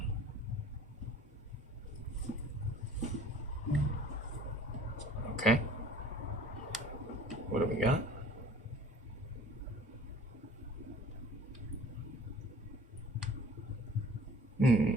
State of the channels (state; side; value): normal; both; correlation 0.49